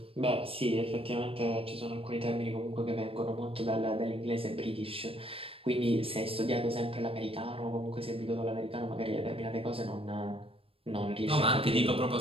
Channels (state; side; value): late; left; 0.27 ms